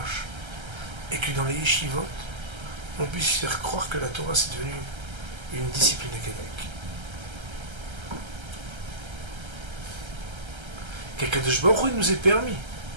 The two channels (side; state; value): left; late; 1.3 ms